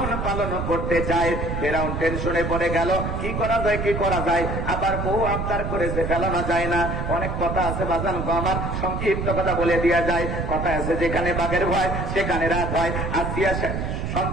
পালন করতে চাই। ফেরাউন টেনশনে পড়ে গেল, কি করা যায়, কি করা যায়। আবার বউ আবদার করেছে, ফেলানো যায় না। অনেক কথা আছে বাজান গো আমার, সংক্ষিপ্ত কথা বলে দেওয়া যায়। কথা আছে, যেখানে বাঘের ভয় সেখানে রাত হয়। আসিয়া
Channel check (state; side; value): noise; right; rumble, 3 dB below the sound